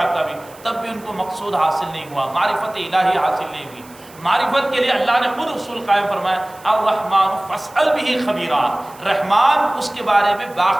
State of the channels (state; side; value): noise; right; hiss, 23 dB below the sound